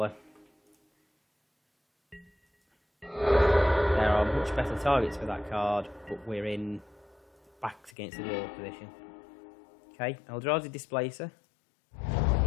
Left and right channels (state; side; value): drops out; right; at 8.0 s